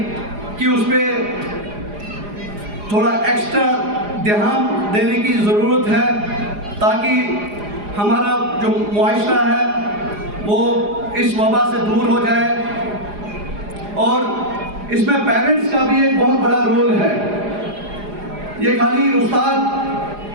कि उस पर थोड़ा एक्स्ट्रा ध्यान देने की ज़रूरत है, ताकि हमारा जो मुआशरा है वो इस वबा से दूर हो जाए। और इसमें पेरेंट्स का भी एक बहुत बड़ा रोल है। ये खाली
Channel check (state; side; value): late; left; 4.9 ms